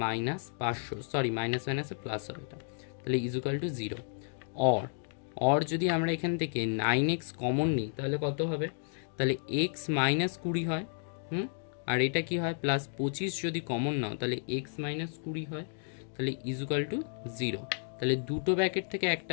minus 500, sorry minus মাইনাসে প্লাস হবে এটা, তাহলে ইজুকাল টু 0। অর যদি আমরা এখান থেকে 9x কমন নিই তাহলে কত হবে? তাহলে x মাইনাস 20 হয়, আর এটা কি হয়? প্লাস 25 যদি কমন নাও তাহলে x মাইনাস 20 হয়, তাহলে ইজুকাল টু 0। তাহলে দুটো ব্র্যাকেট থেকে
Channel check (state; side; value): silent; right; digital silence